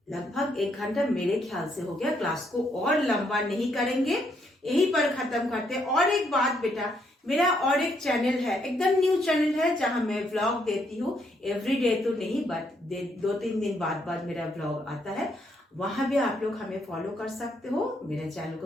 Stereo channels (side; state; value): both; normal; correlation 0.73